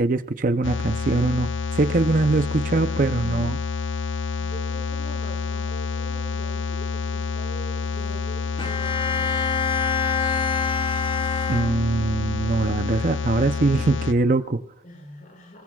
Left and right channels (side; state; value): both; normal; correlation 0.57